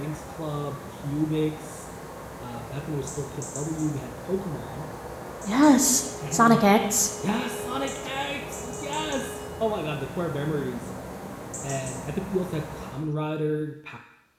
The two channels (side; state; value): both; identical; correlation 1.00